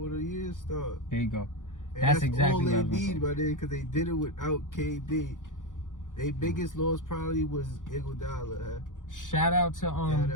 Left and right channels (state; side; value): late; right; 0.87 ms